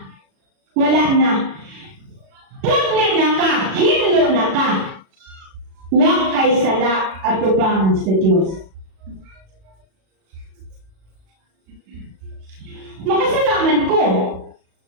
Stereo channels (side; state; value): left; late; 37 ms